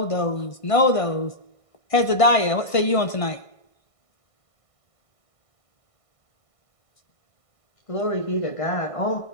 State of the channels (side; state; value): right; late; 1.5 ms